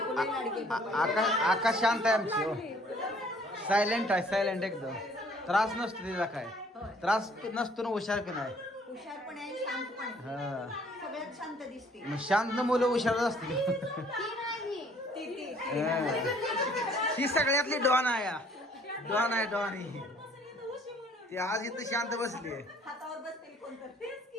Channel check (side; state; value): both; normal; correlation 0.59